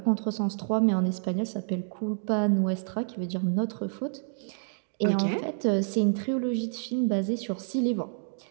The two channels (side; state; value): left; silent; digital silence